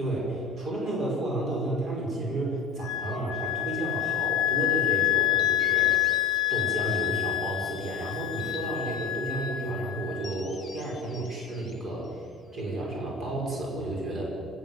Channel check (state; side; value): quieter; right; 4.6 dB